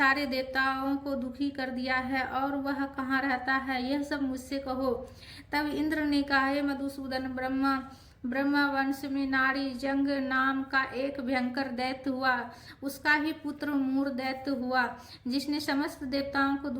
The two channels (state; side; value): identical; both; correlation 1.00